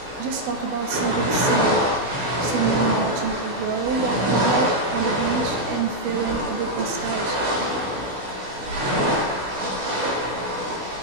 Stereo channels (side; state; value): left; late; 16 ms